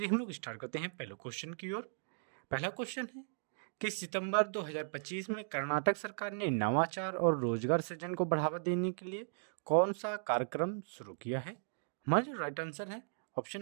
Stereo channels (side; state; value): left; silent; digital silence